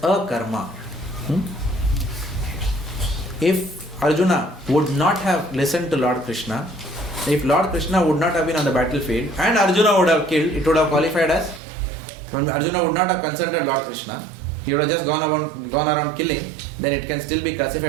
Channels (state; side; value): drops out; left; at 11.6 s